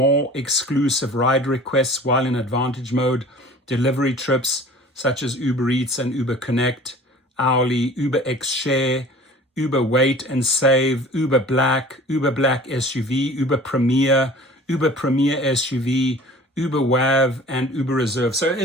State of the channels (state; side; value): normal; both; correlation 0.45